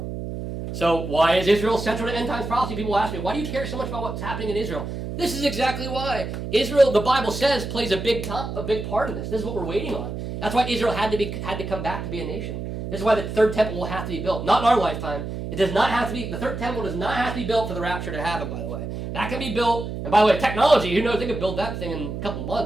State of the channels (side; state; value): right; noise; hum, 6 dB below the sound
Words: So why is Israel central to end times prophecy? People ask me, why do you care so much about what's happening in Israel? This is exactly why. Israel, the Bible says, plays a big part in this. This is what we're waiting on. That's why Israel had to come back to be a nation. This is why the third temple will have to be built. Not in our lifetime. It does not have to be, the third temple does not have to be built for the rapture to happen, by the way. That can be built, and by the way, technology, who knows, they could build that thing in a couple